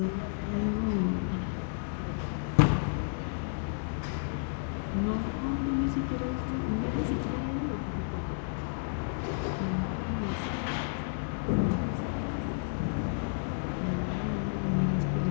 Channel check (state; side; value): silent; right; digital silence